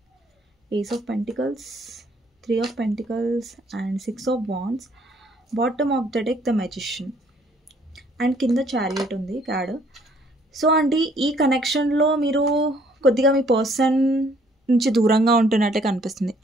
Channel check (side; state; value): both; normal; correlation 0.63